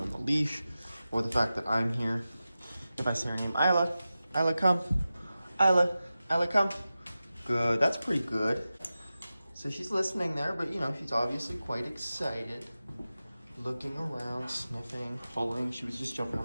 the leash or the fact that I'm here. If I say her name, Isla, Isla come, Isla, Isla come. Good, that's pretty good. So she's listening there, but you know, she's obviously quite excited. Looking around, sniffing, pulling. She was just jumping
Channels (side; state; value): both; inverted; correlation -0.94